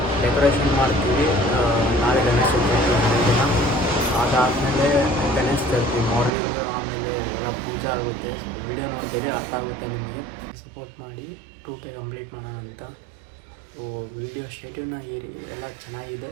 ಡೆಕೋರೇಷನ್ ಮಾಡ್ತೀವಿ. ನಾಳೆ ಗಣೇಶ ಚತುರ್ಥಿ ದಿನ, ಅದಾದಮೇಲೆ ಗಣೇಶ ಚತುರ್ಥಿ ಮಾರ್ನಿಂಗ್, ಆಮೇಲೆ ಎಲ್ಲ ಪೂಜೆ ಆಗುತ್ತೆ. ವೀಡಿಯೋ ನೋಡ್ತೀವಿ, ಅರ್ಥ ಆಗುತ್ತೆ ನಿಮಗೆ. ಸಪೋರ್ಟ್ ಮಾಡಿ 2K ಕಂಪ್ಲೀಟ್ ಮಾಡೋಣ ಅಂತ. ವೀಡಿಯೋ ಶೆಡ್ಯೂಲ್ನ ಏರಿ ಎಲ್ಲ ಚೆನ್ನಾಗಿದೆ.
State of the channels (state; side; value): drops out; left; at 6.3 s